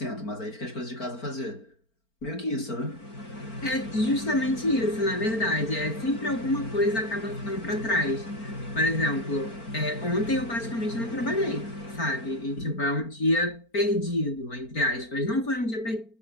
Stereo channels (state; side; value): late; right; 4.4 ms